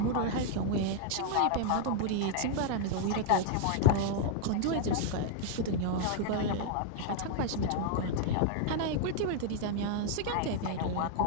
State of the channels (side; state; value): both; different; correlation 0.00